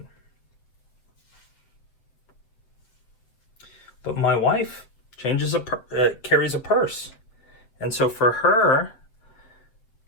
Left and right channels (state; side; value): late; right; 8.1 ms